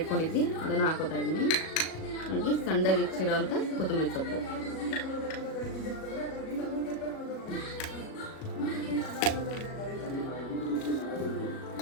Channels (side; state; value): right; late; 37 ms